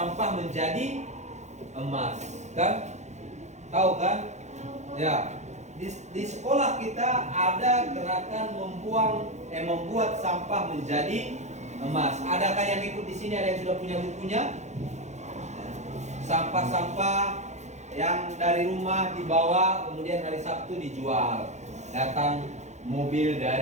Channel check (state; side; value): late; left; 0.33 ms